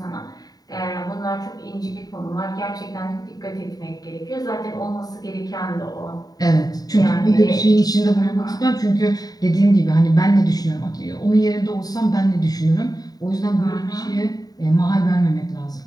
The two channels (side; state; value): right; late; 0.18 ms